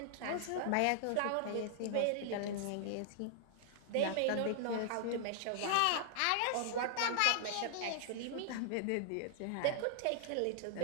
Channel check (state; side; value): different; both; correlation -0.01